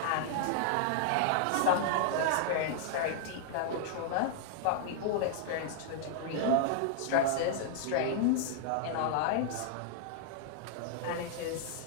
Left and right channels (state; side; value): different; both; correlation -0.01